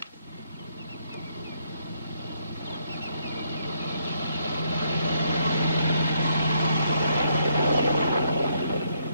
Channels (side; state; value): both; inverted; correlation -0.74